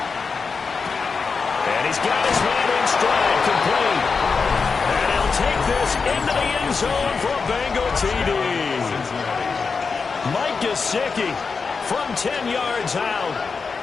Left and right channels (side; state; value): right; quieter; 5.0 dB